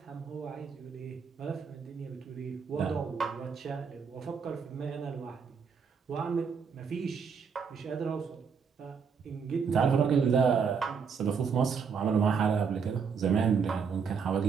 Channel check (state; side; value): quieter; left; 6.1 dB